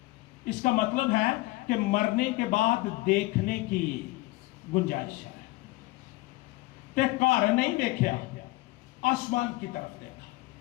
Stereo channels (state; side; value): quieter; right; 20.3 dB